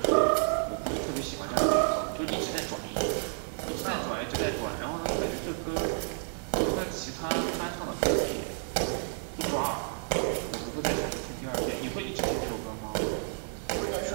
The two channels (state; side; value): silent; left; 57 dB below the other